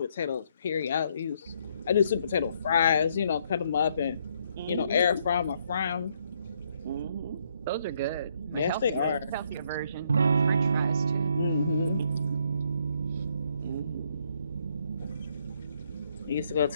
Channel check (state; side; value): inverted; both; correlation -0.71